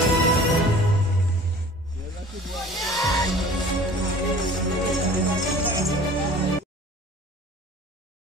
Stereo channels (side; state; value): both; normal; correlation 0.46